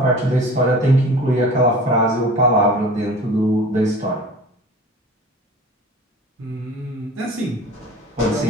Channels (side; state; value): both; normal; correlation 0.41